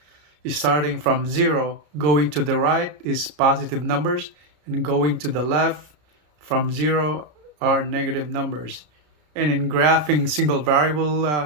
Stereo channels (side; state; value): left; late; 33 ms